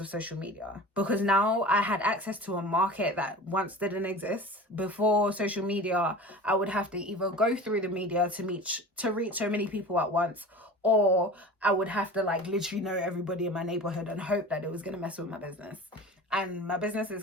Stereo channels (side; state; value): both; normal; correlation 0.37